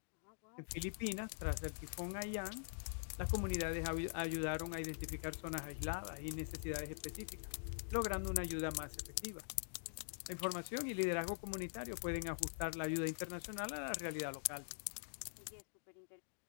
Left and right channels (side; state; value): right; silent; digital silence